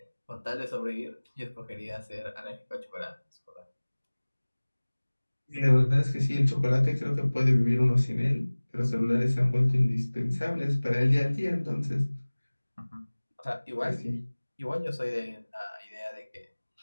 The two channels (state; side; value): inverted; both; correlation -1.00